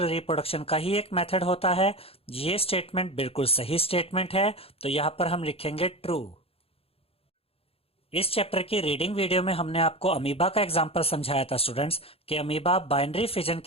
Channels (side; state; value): right; late; 0.28 ms